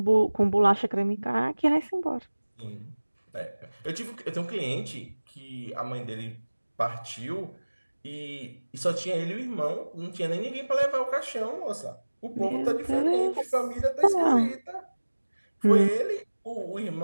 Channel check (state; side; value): inverted; both; correlation -1.00